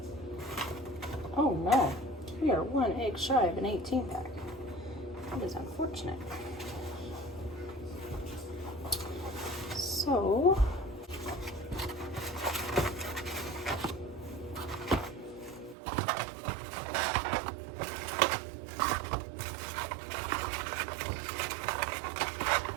Oh no, we are 1 egg shy of an 18 pack. That is unfortunate. So,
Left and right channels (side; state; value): left; drops out; at 15.8 s